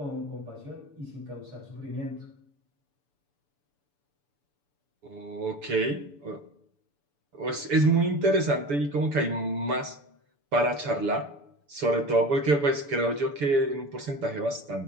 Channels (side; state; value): left; late; 6.9 ms